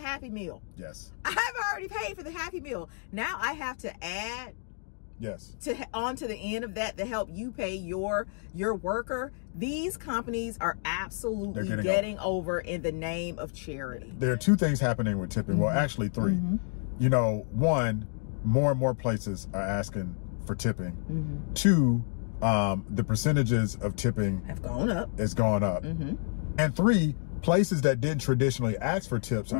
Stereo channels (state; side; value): silent; right; 58 dB below the other